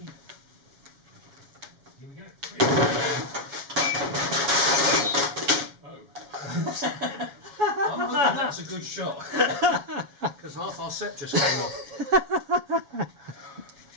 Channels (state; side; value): late; left; 7.2 ms